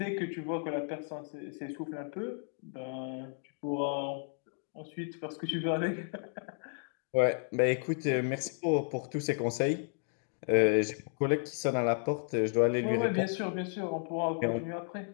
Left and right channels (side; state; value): right; silent; 56 dB below the other